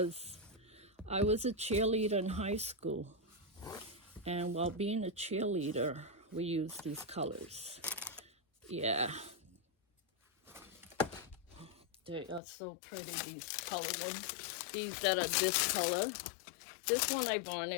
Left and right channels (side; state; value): right; drops out; at 12.4 s